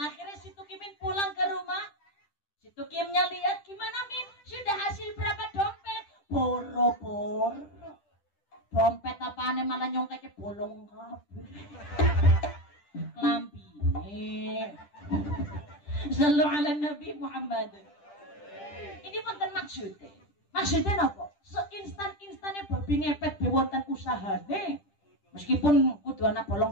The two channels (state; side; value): late; right; 10 ms